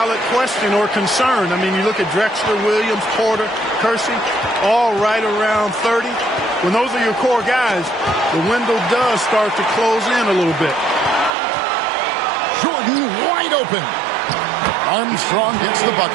question or concern. I mean, you look at Drexler, Williams, Porter, Kersey, all right around 30. When those are your core guys, the window does start to close in a little bit. Jordan wide open. Armstrong gets the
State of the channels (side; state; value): left; drops out; at 11.4 s